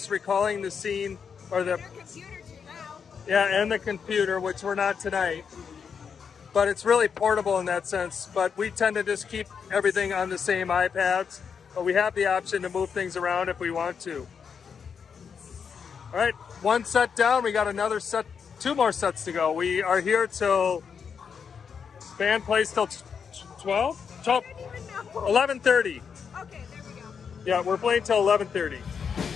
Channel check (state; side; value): quieter; right; 6.5 dB